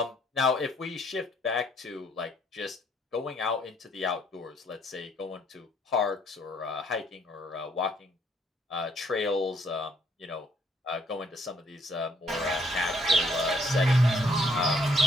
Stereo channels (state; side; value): normal; both; correlation 0.67